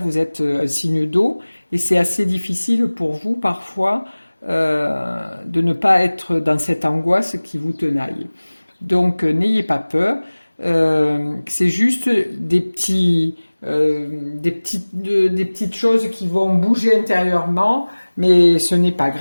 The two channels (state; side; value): inverted; both; correlation -1.00